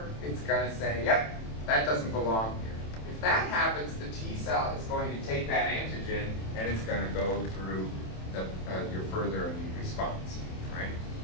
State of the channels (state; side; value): late; right; 27 ms